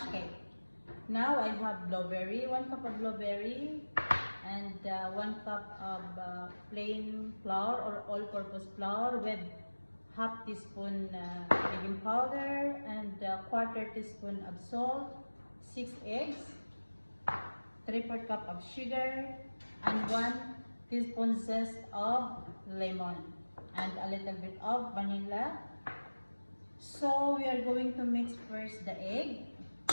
cake. Now I have blueberry, 1 cup of blueberry, and 1 cup of plain flour or all-purpose flour with half teaspoon baking powder and 1/4 teaspoon of salt, 6 eggs, 3/4 cup of sugar, and 1 teaspoon zest of lemon, and a little bit of vanilla. So we are going to mix first the egg.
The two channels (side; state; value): both; inverted; correlation -1.00